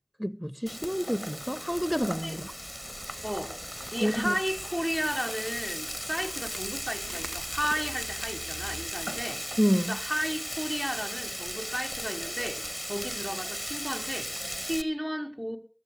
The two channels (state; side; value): identical; both; correlation 1.00